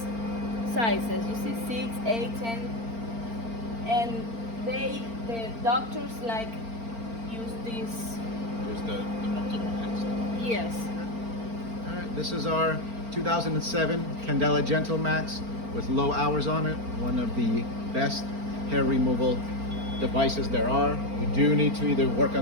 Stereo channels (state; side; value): late; left; 4.4 ms